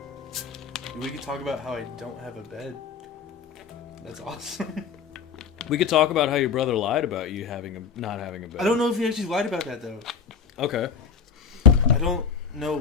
We could talk about how I don't have a bed. That's awesome. We could talk about how your brother lied about you not having a bed. I don't know if he actually lied about that, though. Okay. I don't know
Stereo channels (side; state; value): right; quieter; 6.3 dB